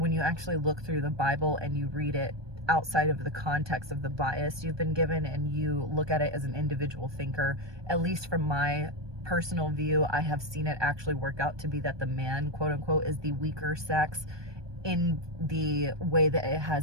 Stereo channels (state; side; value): late; left; 1.2 ms